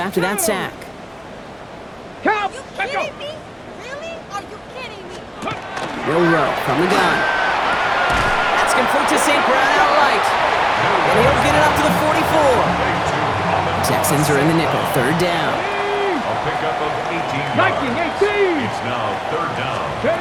that sack. Count. Are you kidding me? Really? Are you kidding me? Monroe from the gun. That's complete to St. Brown outright. And he'll get it up to the 44. Texans are in the nickel. Third down. A pickup of 18 yards. 18. It's now third down.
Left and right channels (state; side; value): identical; both; correlation 1.00